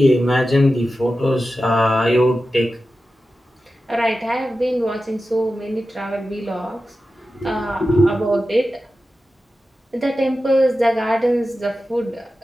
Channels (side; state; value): both; normal; correlation 0.93